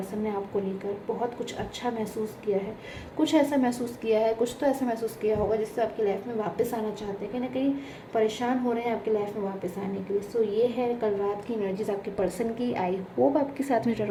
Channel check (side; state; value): both; identical; correlation 1.00